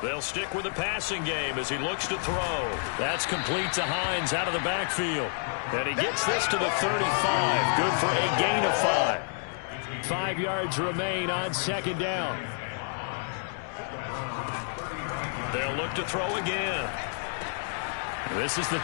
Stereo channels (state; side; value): silent; right; 59 dB below the other